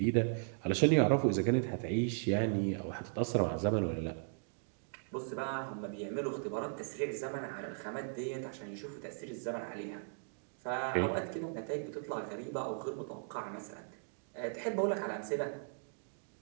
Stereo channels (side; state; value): left; silent; digital silence